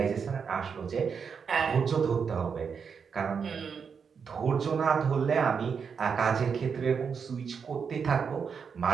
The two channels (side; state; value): left; quieter; 6.3 dB